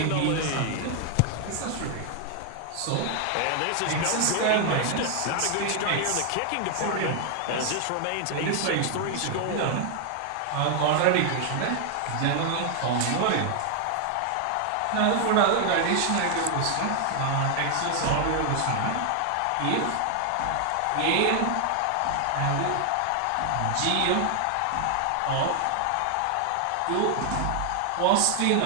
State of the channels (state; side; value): different; both; correlation 0.00